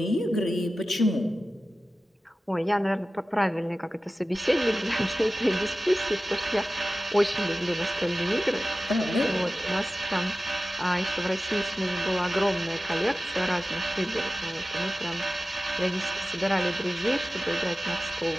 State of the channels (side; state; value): both; normal; correlation 0.95